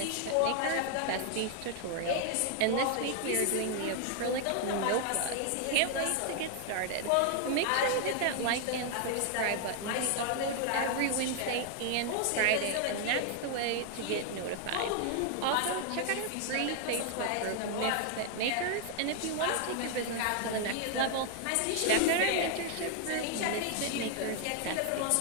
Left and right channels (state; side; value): different; both; correlation 0.00